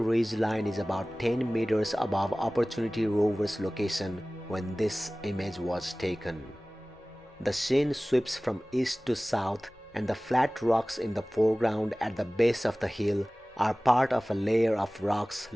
line is about 10 meters above Opportunity rover's location when this image was taken. The scene sweeps from east to south, and the flat rocks in the foreground at the base of the hill are part of a layer of rocks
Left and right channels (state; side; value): noise; left; rumble, 29 dB below the sound